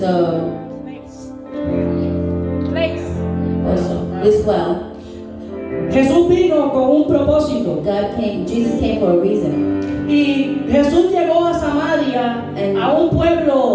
also this well, Jesús vino con un propósito. Jesus came for a reason. Y Jesús llegó a Samaria, a un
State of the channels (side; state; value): both; identical; correlation 1.00